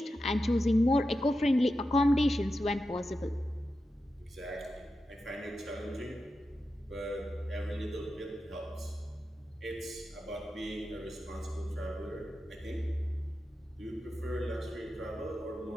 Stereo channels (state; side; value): normal; both; correlation 0.90